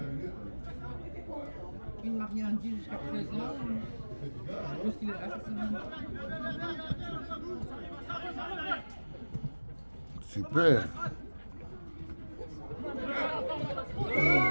il ne m'a rien dit jusqu'à présent. Je suppose qu'il est là cette semaine. Super.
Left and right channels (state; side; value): inverted; both; correlation -1.00